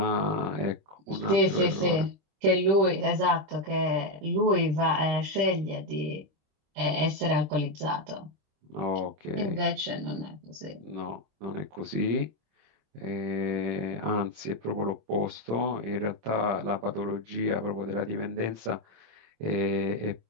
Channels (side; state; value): left; late; 26 ms